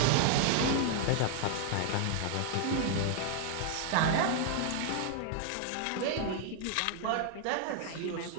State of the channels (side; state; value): both; different; correlation 0.00